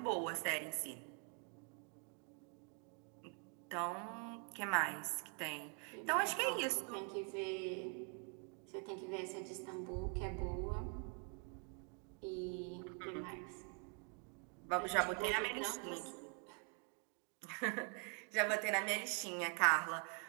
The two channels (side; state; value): left; quieter; 38.0 dB